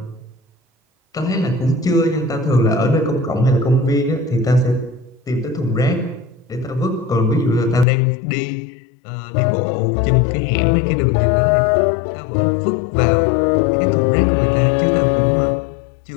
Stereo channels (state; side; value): drops out; right; at 7.9 s